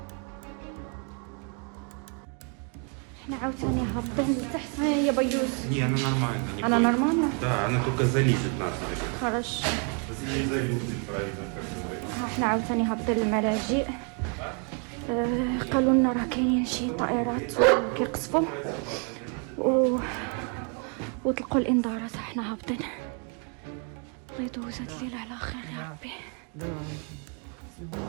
احنا عاوتاني هابطين لتحت يا بيوز. Не, она нормально. Не Она бойся. нормально? Да, она только залезет нас. Хорошо. Если не залезет, правильно, как говорится. احنا عاوتاني هابطين للملاجئ. قالوا لنا راه كاينين شي طائرات كيقصفوا وطلقوا الانذارات. احنا هابطين. الله يدوز هاد الليله على خير يا ربي.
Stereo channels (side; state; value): left; quieter; 38.5 dB